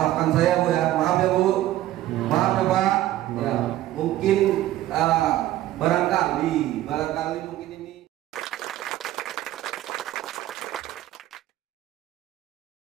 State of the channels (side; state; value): left; quieter; 14.4 dB